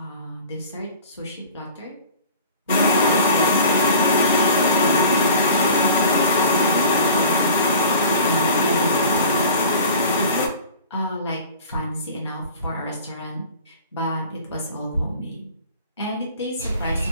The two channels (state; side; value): inverted; both; correlation -0.43